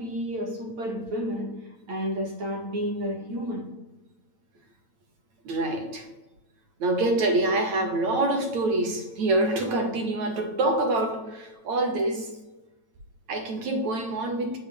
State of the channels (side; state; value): left; late; 9.0 ms